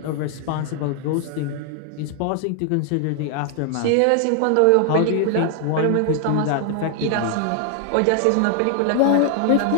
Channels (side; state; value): both; different; correlation 0.00